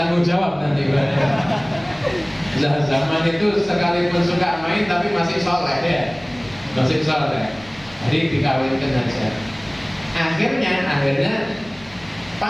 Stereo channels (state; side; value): noise; left; hum, 24 dB below the sound